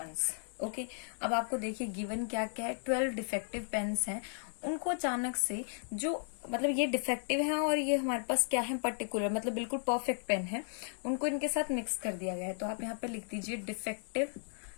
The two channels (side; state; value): right; silent; digital silence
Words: Okay, अब आपको देखिए गिवन क्या क्या है। 12 डिफेक्टिव पेन्स हैं, उनको अचानक से जो मतलब ये डिफेक्टिव है और ये हमारे पास क्या है पर्टिकुलर मतलब बिल्कुल परफेक्ट पेन है, उनको इनके साथ मिक्स कर दिया गया है। तो आप यहाँ पे लिख दीजिए defective